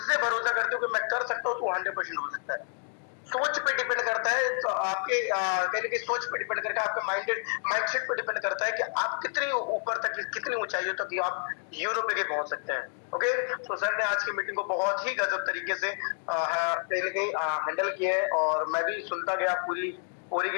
से भरोसा करते हो कि मैं कर सकता हूँ, तो 100% हो सकता है। सोच पे डिपेंड करता है, तो आपके कहने की सोच पे डिपेंड करता है, आपके माइंडसेट पे डिपेंड करता है कि आप कितनी ऊपर तक, कितनी ऊंचाइयों तक आप यूरोप लेके पहुंच सकते हैं। ओके, तो सर ने आज की मीटिंग को बहुत ही गजब तरीके से कहीं ना कहीं हैंडल किया है, और मैं भी सुनता गया पूरी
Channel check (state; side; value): silent; right; 58 dB below the other